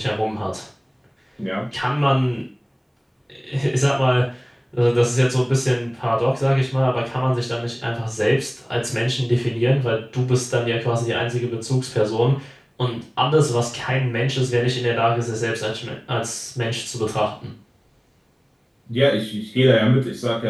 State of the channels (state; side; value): identical; both; correlation 1.00